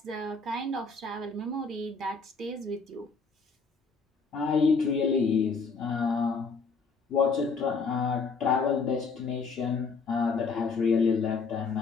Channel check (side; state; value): right; quieter; 4.6 dB